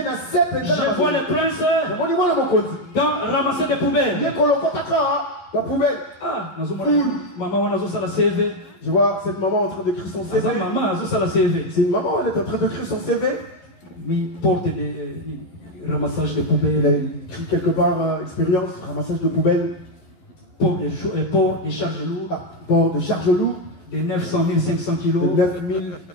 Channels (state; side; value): late; right; 11 ms